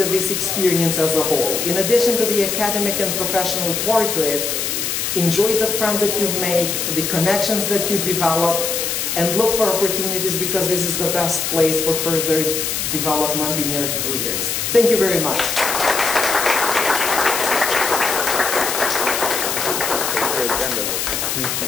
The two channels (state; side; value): noise; left; hiss, 1 dB below the sound